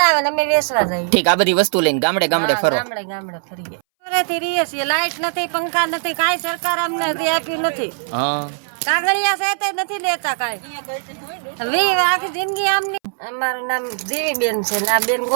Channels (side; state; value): left; silent; 63 dB below the other